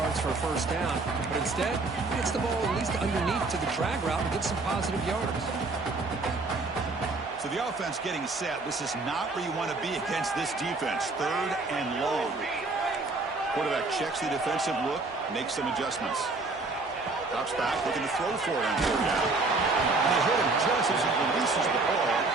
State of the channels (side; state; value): left; quieter; 3.5 dB